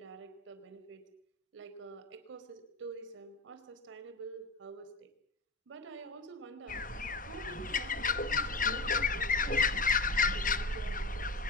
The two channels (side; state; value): right; quieter; 3.3 dB